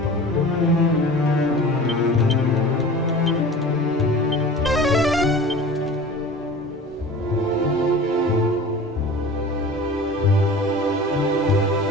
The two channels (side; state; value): both; normal; correlation 0.39